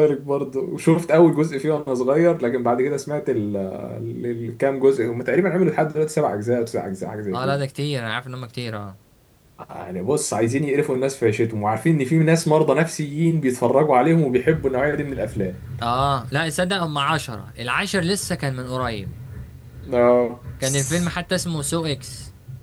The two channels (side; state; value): both; identical; correlation 1.00